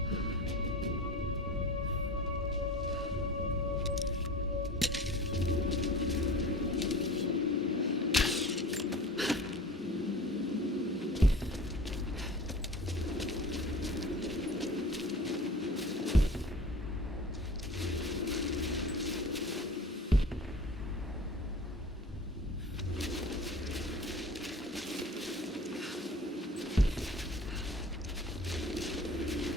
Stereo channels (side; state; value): both; normal; correlation 0.40